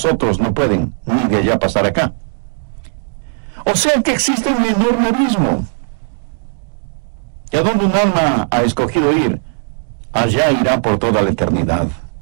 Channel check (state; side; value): silent; left; digital silence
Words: no pueden ni de allá pasar acá. O sea que existe un enorme abismo. ¿Y a dónde un alma ha escogido ir? Allá irá por toda la eternidad.